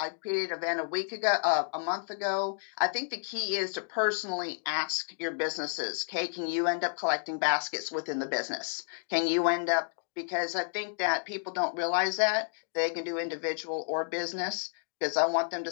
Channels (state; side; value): silent; right; digital silence